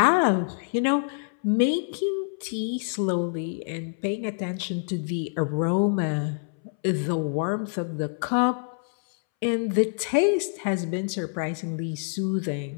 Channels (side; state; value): right; silent; 61 dB below the other